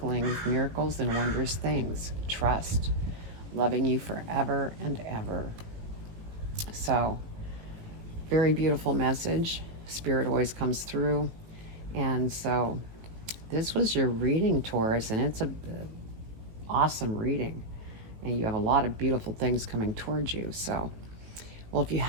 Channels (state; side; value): late; left; 18 ms